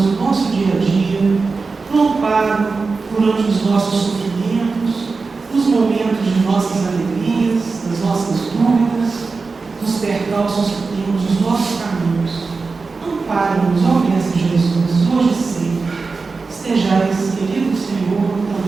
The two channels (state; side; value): quieter; left; 4.3 dB